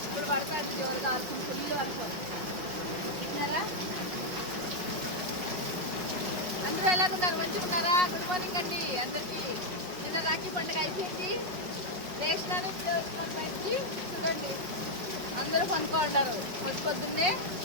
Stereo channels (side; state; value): left; late; 5.2 ms